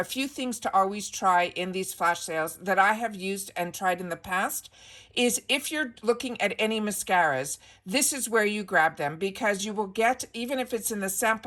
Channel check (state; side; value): identical; both; correlation 1.00